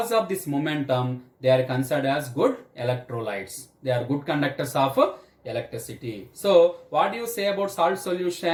of this momentum, they are considered as good electrolytes. They are good conductors of electricity. So what do you say about salt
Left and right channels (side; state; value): both; identical; correlation 1.00